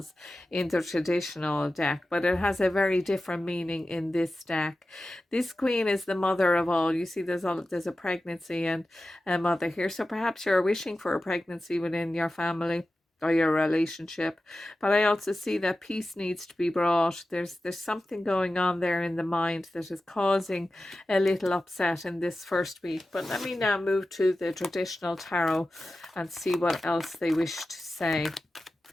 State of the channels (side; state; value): both; normal; correlation 0.94